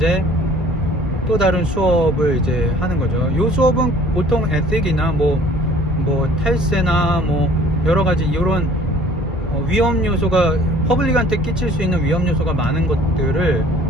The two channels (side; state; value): both; normal; correlation 0.52